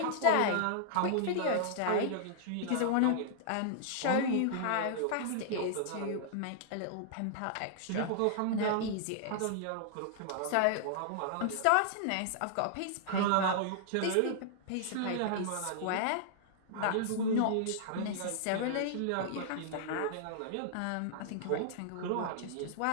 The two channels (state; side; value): different; both; correlation -0.01